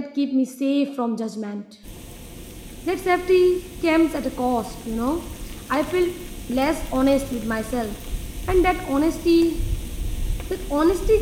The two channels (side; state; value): both; identical; correlation 1.00